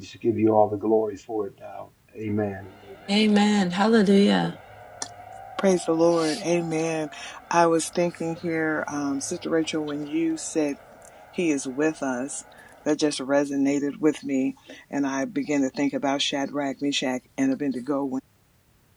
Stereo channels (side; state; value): both; identical; correlation 1.00